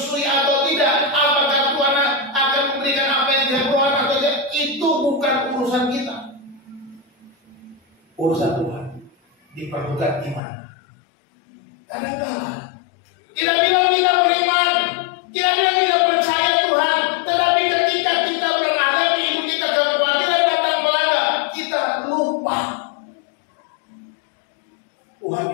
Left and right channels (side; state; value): right; drops out; at 10.4 s